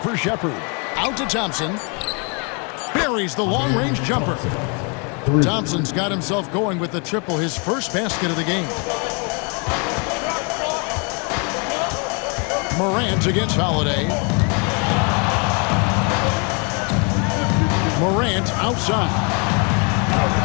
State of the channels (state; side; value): quieter; right; 34.7 dB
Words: for Shepard. Out to Thompson. Buries the long-range jumper. Thompson's got himself going with the triple, his first basket of the game. Morant against Holiday. Morant outside.